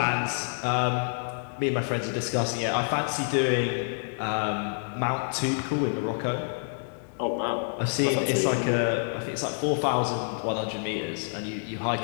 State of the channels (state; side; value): silent; right; digital silence